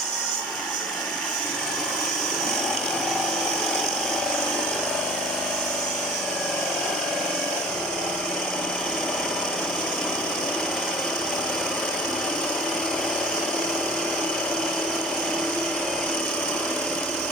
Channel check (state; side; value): normal; both; correlation 0.46